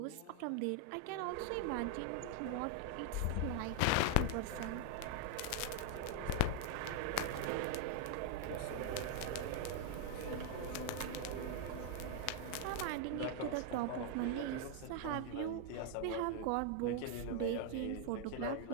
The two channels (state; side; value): different; both; correlation 0.00